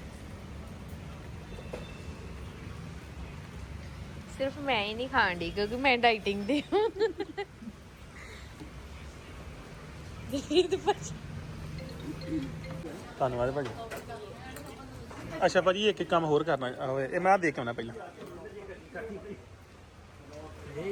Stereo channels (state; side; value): identical; both; correlation 1.00